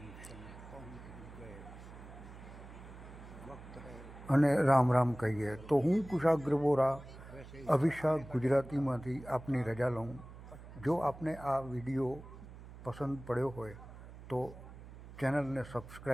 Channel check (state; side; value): noise; right; hum, 16 dB below the sound